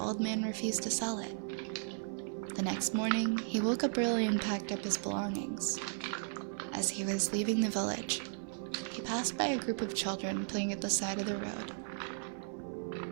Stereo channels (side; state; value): left; silent; 54 dB below the other